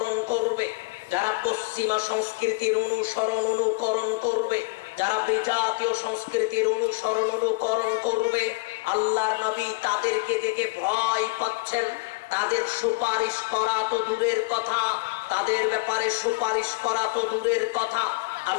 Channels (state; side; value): quieter; right; 28.7 dB